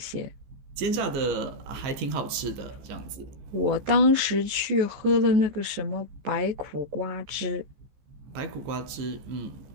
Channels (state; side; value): late; left; 15 ms